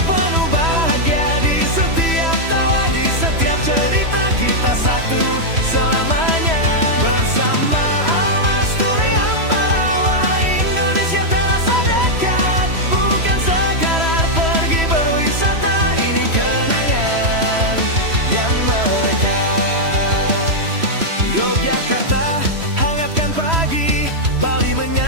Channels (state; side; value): late; left; 3.1 ms